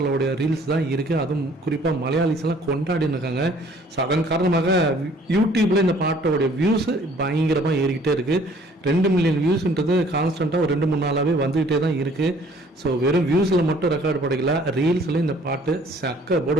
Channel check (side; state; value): both; normal; correlation 0.57